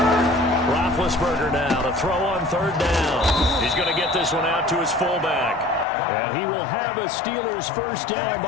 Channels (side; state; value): right; drops out; at 5.9 s